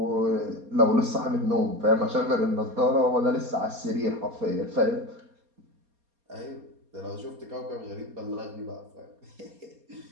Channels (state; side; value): late; left; 4.2 ms